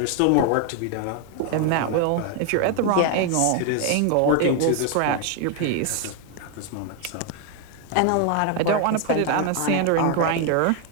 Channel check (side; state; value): both; different; correlation 0.01